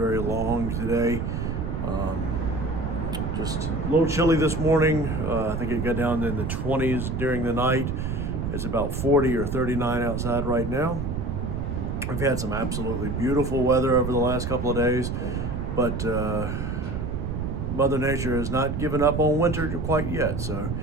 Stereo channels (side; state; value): right; noise; rumble, 3 dB below the sound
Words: long today. Just a little chilly this morning. I think it got down in the 20s during the night. It's about 40 or 39 outside right now. We've had some absolutely beautiful weather over the last couple of days, but Mother Nature has not given up on winter quite yet. So